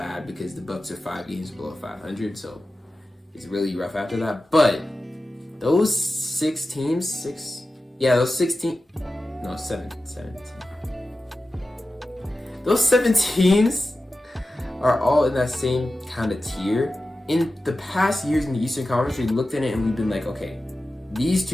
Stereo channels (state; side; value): normal; both; correlation 0.93